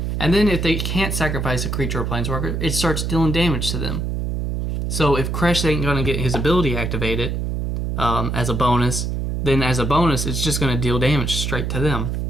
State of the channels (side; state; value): right; noise; hum, 1 dB below the sound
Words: And then if they can't sacrifice a creature or planeswalker, it starts dealing damage to them. So if Kresh ain't going to get his ability activated as a bonus, then as a bonus it's just going to deal damage straight to them.